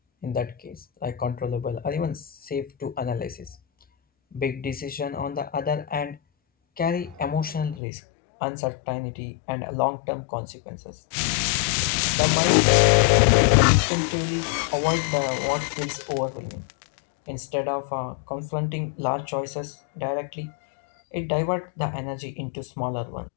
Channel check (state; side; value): drops out; right; at 7.8 s